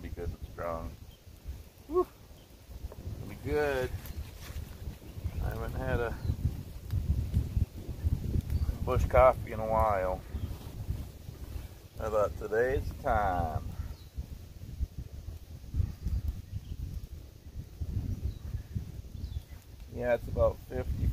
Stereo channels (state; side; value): identical; both; correlation 1.00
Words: be good and strong. Whew. Gonna be good. I haven't had a bush coffee in a while. I thought today's the time. Yeah, it's about